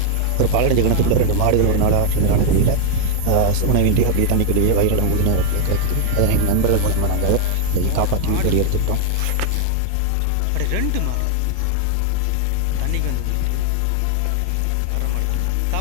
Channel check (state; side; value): different; both; correlation 0.00